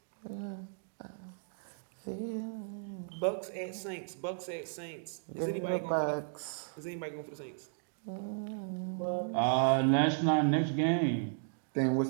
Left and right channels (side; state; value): left; silent; digital silence